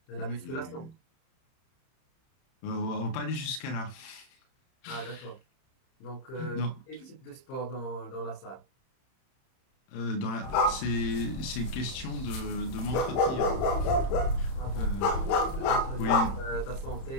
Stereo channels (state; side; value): late; right; 31 ms